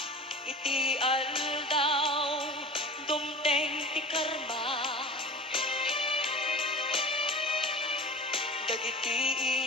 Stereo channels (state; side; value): normal; both; correlation 0.35